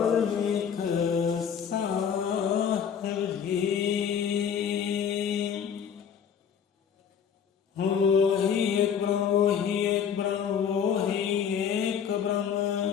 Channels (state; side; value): quieter; right; 7.7 dB